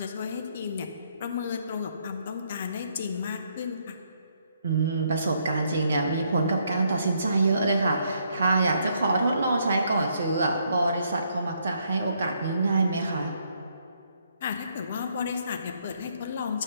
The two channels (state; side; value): inverted; both; correlation -0.72